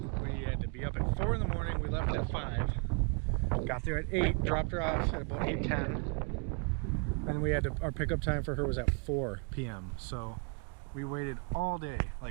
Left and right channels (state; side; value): quieter; left; 37.6 dB